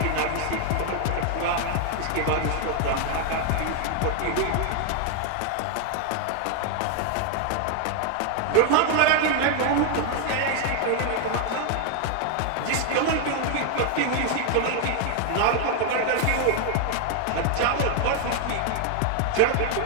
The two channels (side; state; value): both; different; correlation 0.00